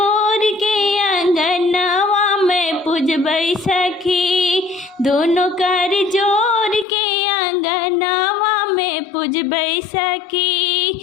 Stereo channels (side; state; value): right; drops out; at 6.9 s